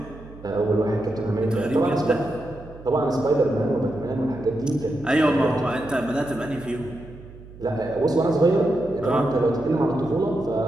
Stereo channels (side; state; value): right; noise; hum, 18 dB below the sound